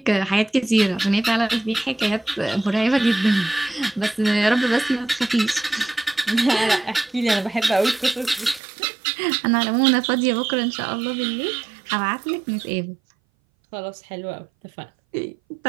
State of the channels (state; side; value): drops out; left; at 8.6 s